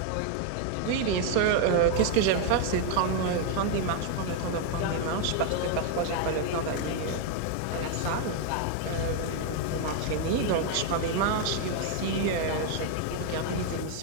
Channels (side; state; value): both; different; correlation 0.00